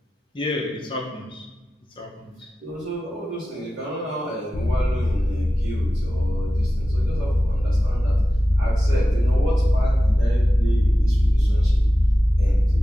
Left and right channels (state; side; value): normal; both; correlation 0.95